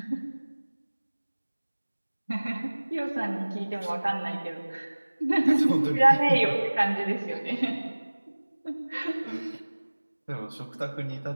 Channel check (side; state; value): both; inverted; correlation -1.00